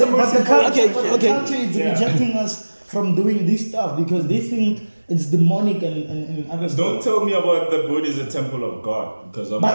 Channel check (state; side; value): inverted; both; correlation -1.00